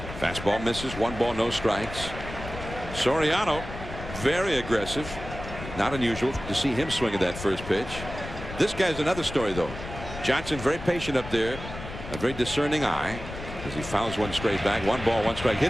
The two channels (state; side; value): noise; left; rumble, 10 dB below the sound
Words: Fastball misses, 1 ball, no strikes. Soriano, very aggressive. Not unusual to see him swing at that first pitch. This guy's another story, though. Johnson very patient up there, a very discerning eye as he fouls one straight back. 1 ball, 1 strike,